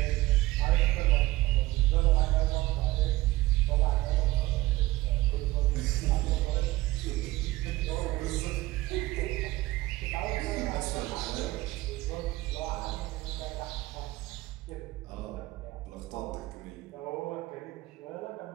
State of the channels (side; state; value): left; quieter; 18.5 dB